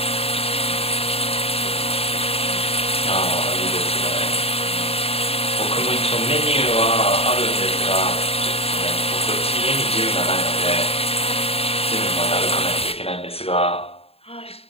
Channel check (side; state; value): right; late; 0.28 ms